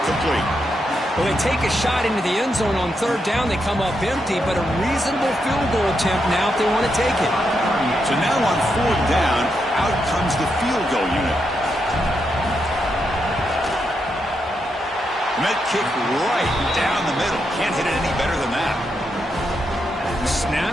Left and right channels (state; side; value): normal; both; correlation 0.82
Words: complete. Well, they take a shot into the end zone on 3rd down. They come up empty, but a reasonable field goal attempt now if they want to take it. So now on 4th down, out comes the field goal unit. Met kick right down the middle. Can't hit it any better than that. The